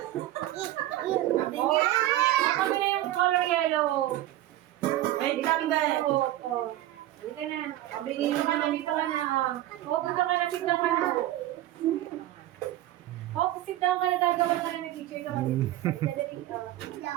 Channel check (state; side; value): quieter; left; 14.5 dB